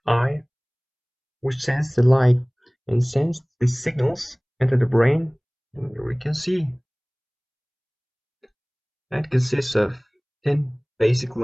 eye, which sends the light and sends the signals into the brain, and we can see. That consists of 10 basic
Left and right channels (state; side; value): identical; both; correlation 1.00